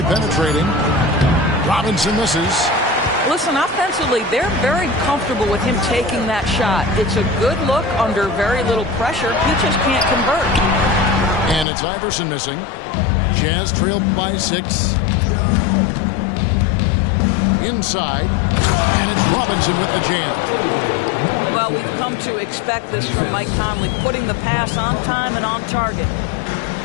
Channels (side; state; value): right; drops out; at 11.7 s